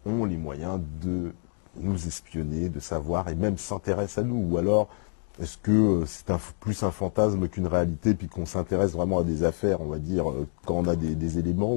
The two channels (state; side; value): silent; right; digital silence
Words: ont les moyens de nous espionner, de savoir et même s'intéressent à nous? Ou alors, est-ce que c'est plus un fantasme qu'une réalité, puis qu'on s'intéresse vraiment à des affaires, on va dire, quand on a des éléments,